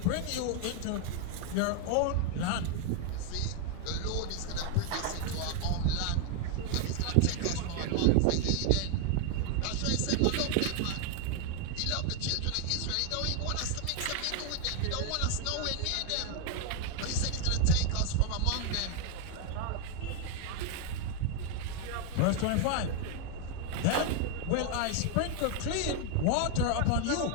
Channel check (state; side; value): different; both; correlation 0.01